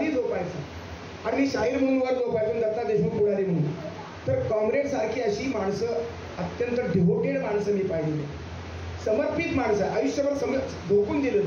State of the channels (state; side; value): identical; both; correlation 1.00